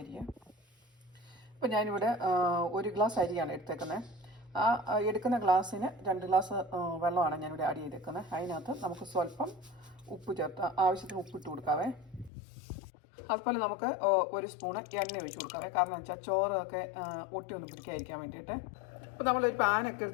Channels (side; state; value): right; drops out; at 12.3 s